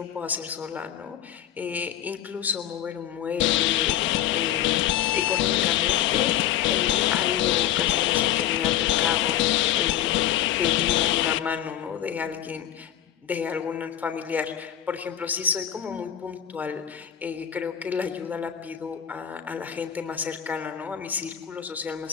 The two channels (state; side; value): quieter; right; 11.0 dB